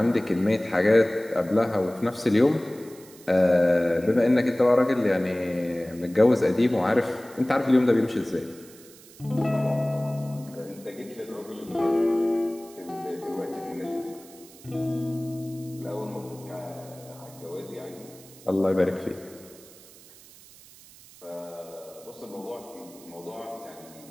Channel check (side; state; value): right; noise; hiss, 22 dB below the sound